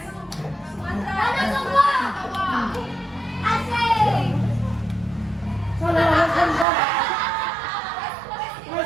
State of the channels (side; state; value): left; drops out; at 6.7 s